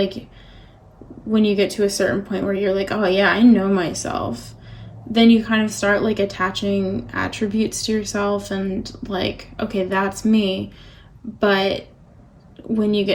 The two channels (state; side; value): identical; both; correlation 1.00